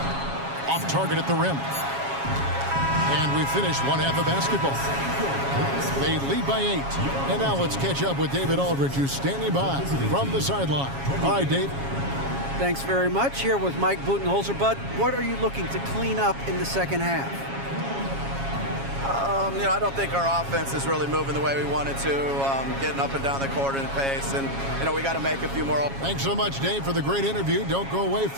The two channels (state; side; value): late; left; 7.3 ms